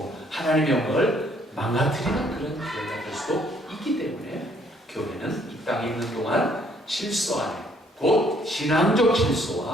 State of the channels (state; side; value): normal; both; correlation 0.65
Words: 하나님의 영광을 망가뜨리는 그런 교회가 될 수도 있기 때문에 교회는 이 땅에 있는 동안 질서 안에, 곧 신앙적